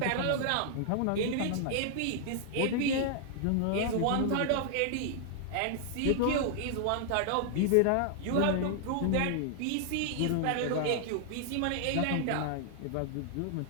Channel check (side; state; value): both; different; correlation -0.01